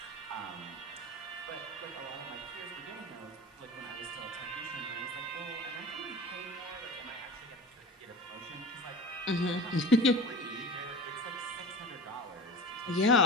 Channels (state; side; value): normal; both; correlation 0.33